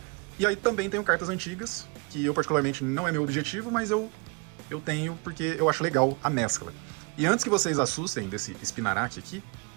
E aí também tenho cartas antigas, que eu particularmente não é meu objetivo, mas eu tenho porque eu acho legal a mescla. E antes que vocês assustem desse Spinarak aqui,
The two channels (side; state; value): left; quieter; 31.3 dB